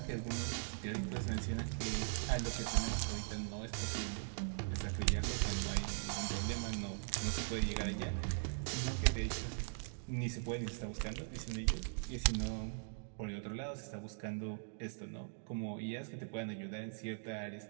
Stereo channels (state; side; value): silent; left; digital silence